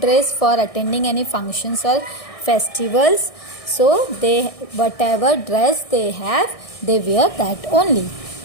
for attending any functions or festivals. So they whatever dress they have, they wear that only.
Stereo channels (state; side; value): late; right; 1.6 ms